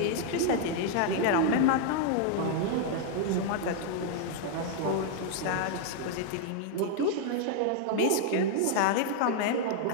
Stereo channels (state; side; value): different; both; correlation 0.00